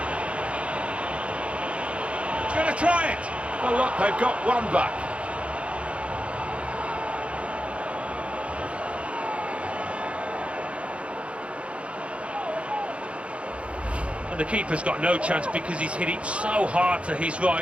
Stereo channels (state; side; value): late; left; 0.061 ms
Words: He's going to try it. Well, look, they've got one back. And the keeper's got no chance because he's hit it so hard to his right.